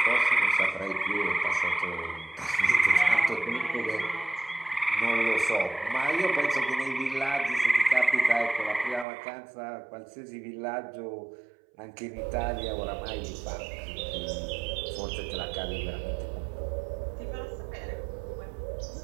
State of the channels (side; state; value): left; drops out; at 9.1 s